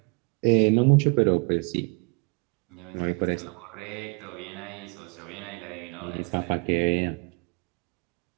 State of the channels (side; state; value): left; quieter; 34.5 dB